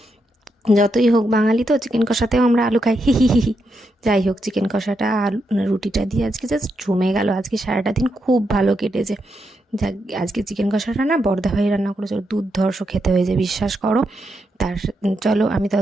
যতই হোক বাঙালি তো, চিকেন কষাতেও আমরা আলু খাই, হি হি হি হি। যাই হোক, চিকেন কষাটা আলু রুটিটা দিয়ে আজকে জাস্ট জমে গেল। আজকে সারাটা দিন খুব ভালো কেটেছে। যাক, আজকে চিকেন কষাটা না বর্দা ভাই রান্না করেছে, দুর্ধর্ষ খেতে হয়েছে, বিশ্বাস করো। চলো আমি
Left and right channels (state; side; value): normal; both; correlation 0.83